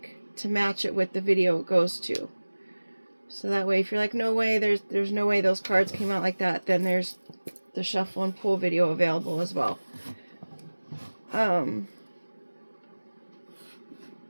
to match it with the video it goes to. So that way, if you're like, no way, there's no way those cards came out like that, then there's the shuffle and pull video available as well.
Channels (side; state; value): both; inverted; correlation -1.00